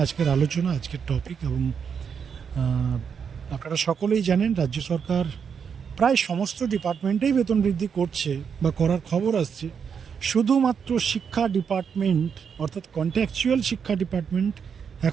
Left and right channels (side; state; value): left; quieter; 6.8 dB